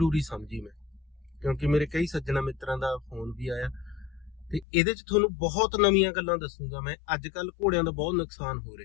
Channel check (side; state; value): right; drops out; at 4.7 s